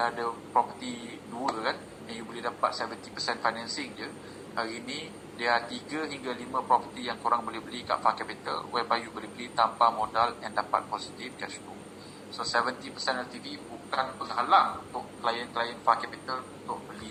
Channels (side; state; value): both; identical; correlation 1.00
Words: ada property 2 kan, and you boleh dapat 70% financing je, hari ni dia 3 hingga 5 property yang korang boleh beli kat Far Capital, whereby you boleh beli tanpa modal and dapat positive cash flow. So 70% LTV bukan penghalang untuk klien-klien Far Capital untuk